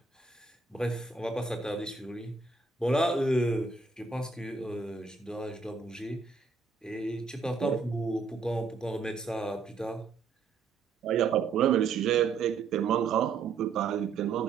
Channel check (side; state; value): left; quieter; 4.8 dB